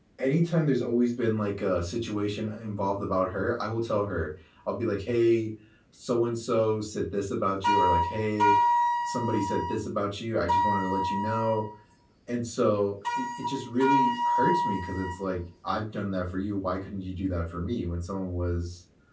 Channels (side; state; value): both; identical; correlation 1.00